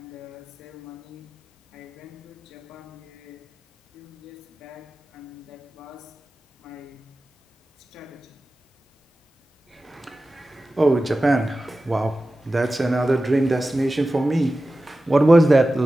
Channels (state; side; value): normal; both; correlation 0.95